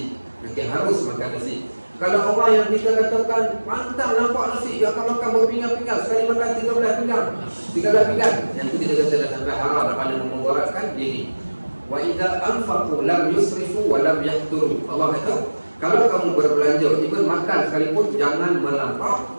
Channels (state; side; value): inverted; both; correlation -1.00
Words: Okey, harus makan nasi. Kalau orang yang kita katakan pantang nampak nasi, dia akan makan berpinggan-pinggan, sekali makan 13 pinggan. Yang tu kita kata dah sampai haram, dah pandai memudaratkan diri. Wa idza anfaqu lam yusrifu wa lam yahturu. Allah kata Kalau kamu berbelanja, even makan sekalipun, jangan melampau.